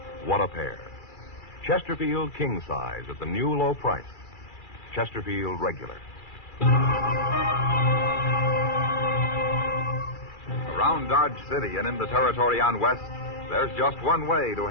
What a pair. Chesterfield King Size at the new low price. Chesterfield Regular. Around Dodge City and in the territory on West, there's just one way to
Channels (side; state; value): right; late; 2.4 ms